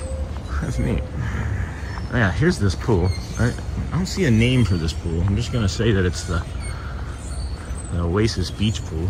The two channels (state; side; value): identical; both; correlation 1.00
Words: That's neat. Oh, yeah, here's this pool. I don't see a name for this pool. I'm just gonna say that it's the Oasis Beach Pool,